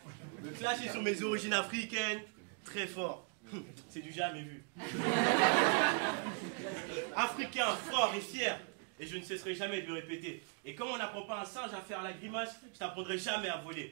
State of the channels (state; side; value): quieter; left; 39.3 dB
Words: Le flash est sur mes origines africaines, très fort. C'est du jamais vu. Africain, fort et fier. Et je ne cesserai jamais de le répéter. Et comme on n'apprend pas un singe à faire la grimace, je t'apprendrai jamais à